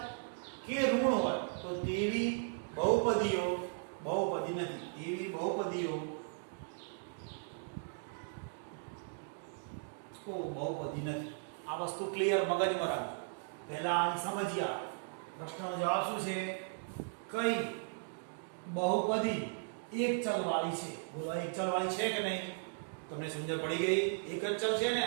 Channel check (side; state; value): left; silent; digital silence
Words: કે ઋણ હોય તો તેવી બહુપદીઓ બહુપદી નથી. તેવી બહુપદીઓ બહુપદી નથી. આ વસ્તુ ક્લિયર મગજમાં રાખજો. પહેલા આને સમજીએ. પ્રશ્નનો જવાબ શું છે? કઈ બહુપદી એક ચલ વાળી છે? બોલો એક ચલ વાળી છે કે નહીં? તમને સમજણ પડી ગઈ? એક જ ચલ છે ને?